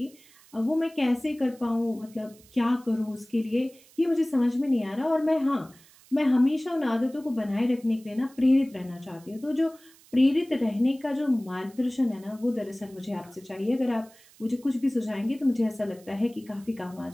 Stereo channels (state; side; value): noise; right; hiss, 26 dB below the sound